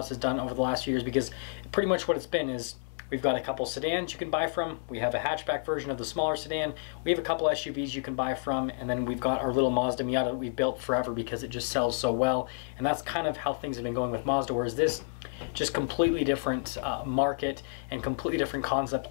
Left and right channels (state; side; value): silent; right; 58 dB below the other